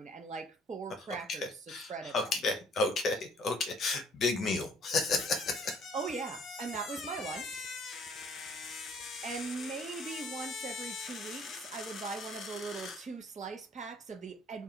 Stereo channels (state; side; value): normal; both; correlation 0.58